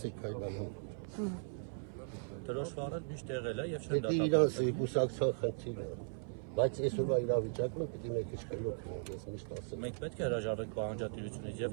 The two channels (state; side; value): silent; left; 53 dB below the other